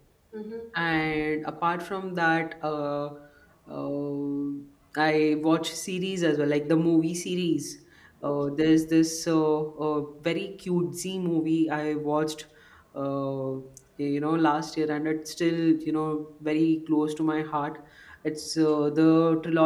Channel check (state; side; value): identical; both; correlation 1.00